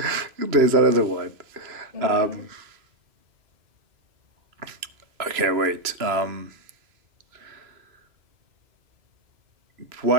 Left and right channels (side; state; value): left; late; 2.9 ms